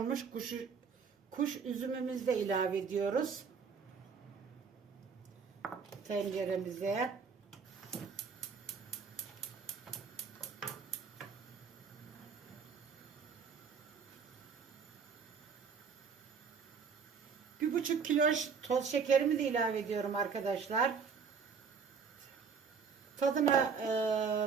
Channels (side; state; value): left; quieter; 5.9 dB